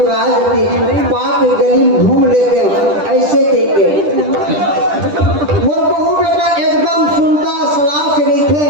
थी बात गली में घूम लेते हैं ऐसे कहते मोर बहु बेटा एकदम सुनता सलाह से नहीं थे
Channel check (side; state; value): left; late; 10 ms